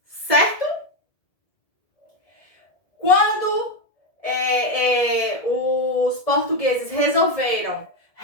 certo? Quando os portugueses resolveram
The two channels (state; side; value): late; right; 1.7 ms